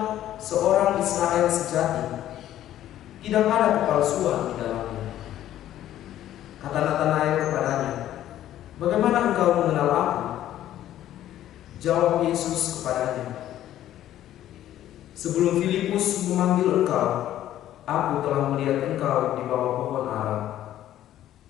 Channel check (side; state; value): right; quieter; 12.5 dB